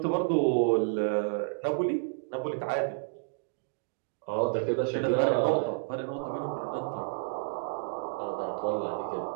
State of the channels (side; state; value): left; silent; digital silence